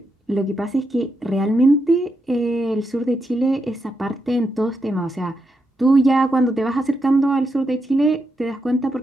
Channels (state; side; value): normal; both; correlation 0.83